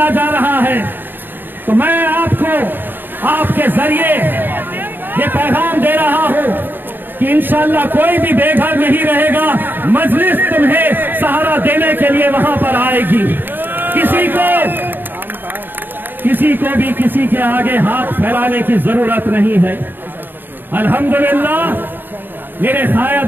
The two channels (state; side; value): late; left; 0.094 ms